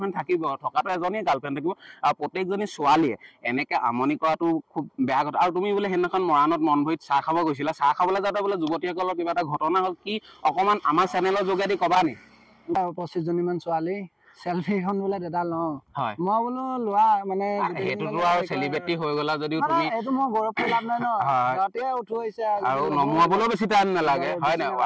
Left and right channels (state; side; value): identical; both; correlation 1.00